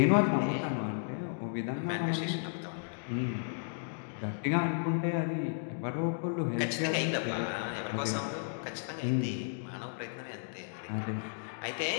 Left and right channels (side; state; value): right; silent; digital silence